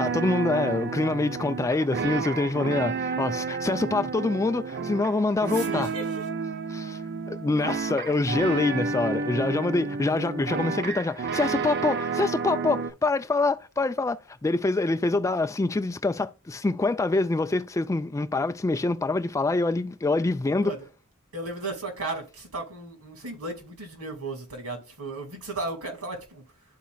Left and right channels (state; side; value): normal; both; correlation 0.64